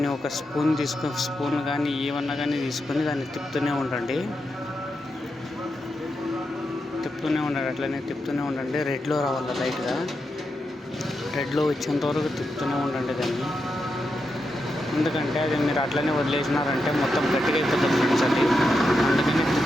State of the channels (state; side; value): normal; both; correlation 0.86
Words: ఒక స్పూన్ కానీ ఏమన్నా కానీ తీసుకొని దాన్ని తిప్పుతూనే ఉండండి. అట్లనే తిప్పుతూనే ఉండండి. రెడ్లో రావాలి లైట్గా. రెడ్లో వచ్చేంత వరకు తిప్పుతూనే ఉండండి దాన్ని. ఎందుకంటే అది మీరు అట్లనే వదిలేసినారంటే మొత్తం గట్టిగా అయిపోతుంది ఫ్రెండ్స్ అది. అందుకని